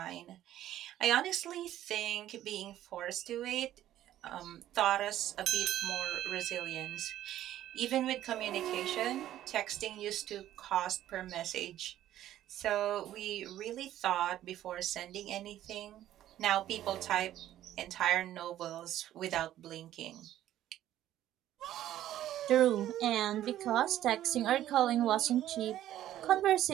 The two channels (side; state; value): left; quieter; 12.7 dB